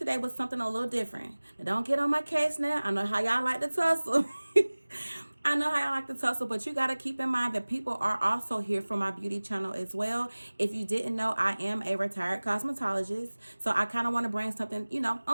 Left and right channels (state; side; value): inverted; both; correlation -1.00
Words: with something a little different. Now, don't get on my case now. I know how y'all like to tussle. I know how y'all like to tussle, but you got to keep in mind that people are also here for my beauty channel as well. If you didn't know, I am a retired cosmetologist. So I kind of want to bring something,